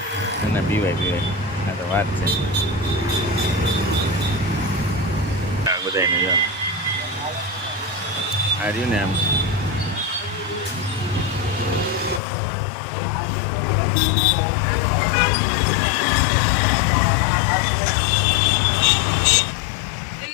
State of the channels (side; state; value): right; drops out; at 12.2 s